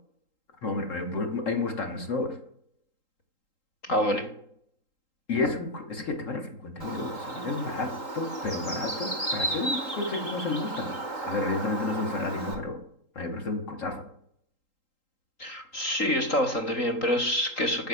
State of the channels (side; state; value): right; late; 3.8 ms